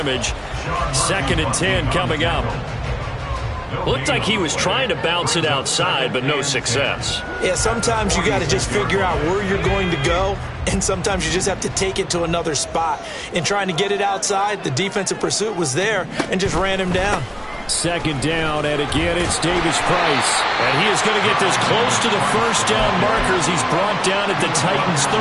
2nd and 10 coming up. Looked like he was trying to bounce it outside, but no success. Yeah, sometimes you got to just figure out where you're going to go, and sometimes you just have to take it to another spot. In trying to get it outside, the defensive pursuit was there and just ran him down. 2nd down, and again, it's Davis Price. And he is going to get this close to the first down markers. He's brought down at the Titans'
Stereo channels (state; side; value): identical; both; correlation 1.00